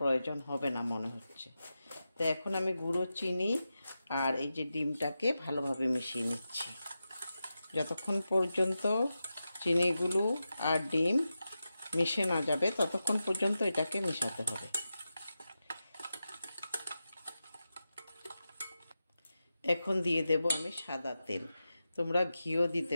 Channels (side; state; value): both; inverted; correlation -0.91